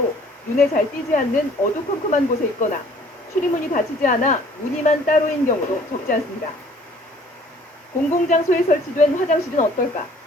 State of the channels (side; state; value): both; normal; correlation 0.55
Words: 눈에 잘 띄지 않는 어두컴컴한 곳에 있거나 출입문이 닫히지 않아 무늬만 따로인 경우도 적지 않습니다. 공공장소에 설치된 화장실은 어떨까?